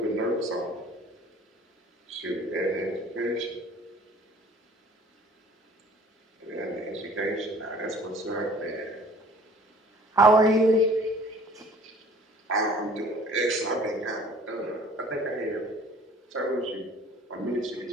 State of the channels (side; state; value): both; normal; correlation 0.51